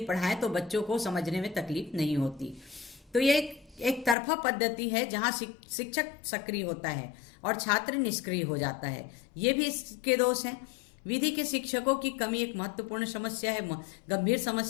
पढ़ाएं तो बच्चों को समझने में तकलीफ नहीं होती। तो ये एक तरफा पद्धति है जहां शिक्षक सक्रिय होता है और छात्र निष्क्रिय हो जाता है। ये भी इसके दोष हैं। विधि के शिक्षकों की कमी एक महत्वपूर्ण समस्या है, गंभीर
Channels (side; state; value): right; drops out; at 4.2 s